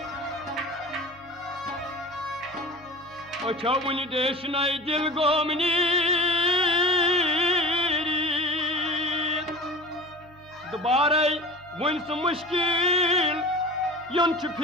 ओछवन देश नई दिल गोमनी दोबारा वन सु मुश्किल यम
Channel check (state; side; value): normal; both; correlation 0.36